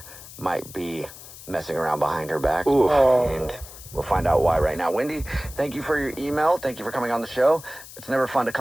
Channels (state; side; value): noise; left; hiss, 16 dB below the sound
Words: might be messing around behind her back. Oof. And we'll find out why right now. Wendy, thank you for your email. Thank you for coming on the show. It's never fun to